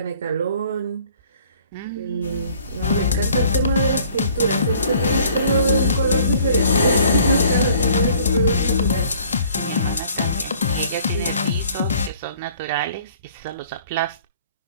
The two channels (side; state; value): both; inverted; correlation -0.55